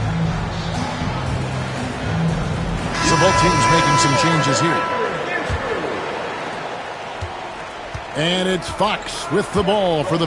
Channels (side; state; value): both; identical; correlation 1.00